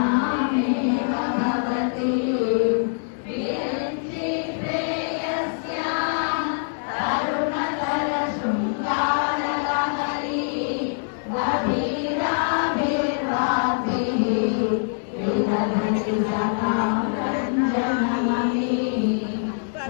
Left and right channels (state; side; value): silent; right; digital silence